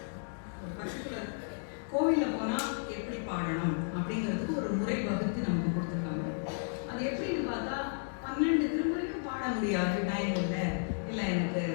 பர்டிகுலர் கோவிலில் போனால் எப்படி பாடணும் அப்படிங்கிறதுக்கு ஒரு முறை வகுத்து நமக்கு கொடுத்துருக்காங்க. அது எப்படின்னு பார்த்தா 12 திருமுறையும் பாட முடியாது, டைம் இல்லை எனக்கு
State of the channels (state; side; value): silent; right; digital silence